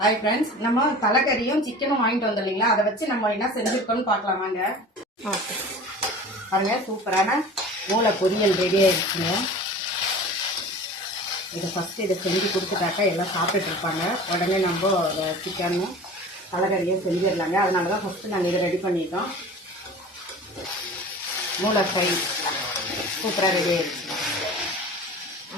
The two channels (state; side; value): normal; both; correlation 0.39